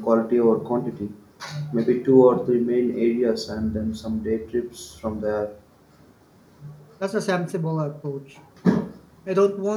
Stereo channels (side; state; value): both; identical; correlation 1.00